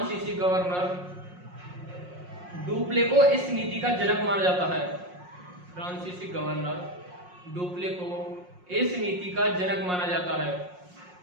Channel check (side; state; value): left; late; 5.6 ms